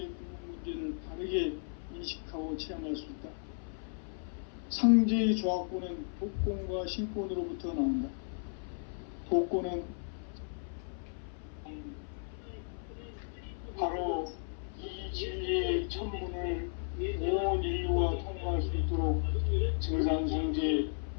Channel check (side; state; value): right; silent; 55 dB below the other